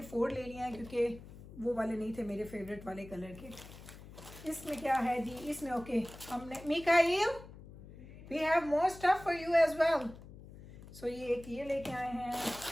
4 ले लिए हैं क्योंकि वो वाले नहीं थे मेरे फेवरेट वाले कलर के। इसमें क्या है जी, इसमें ओके हमने Mikail we have more stuff for you as well. So ये एक ये लेके आए हैं,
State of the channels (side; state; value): left; noise; hum, 17 dB below the sound